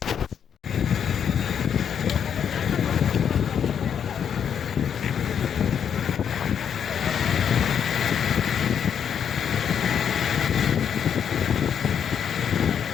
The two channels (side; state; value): right; quieter; 8.1 dB